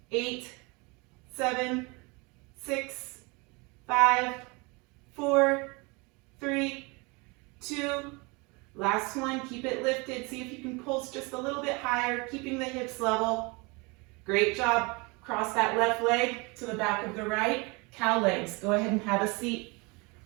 8, 7, 6, 5, 4, 3, 2. Last one, keep it lifted. See if you can pulse just a little bit higher, keeping the hips level. Great job. Cross that left leg to the back of the right. Cow legs. Go ahead and have a seat.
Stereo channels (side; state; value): left; quieter; 27.9 dB